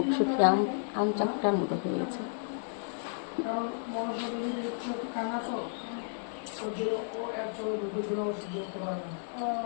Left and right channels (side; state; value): right; silent; digital silence